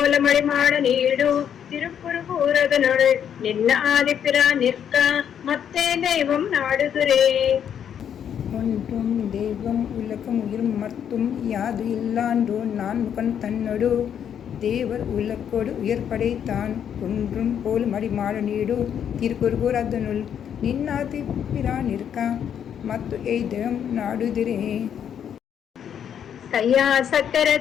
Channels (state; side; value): quieter; right; 8.8 dB